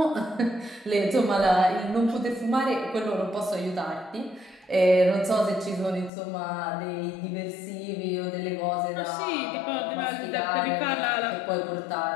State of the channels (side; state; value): right; drops out; at 6.1 s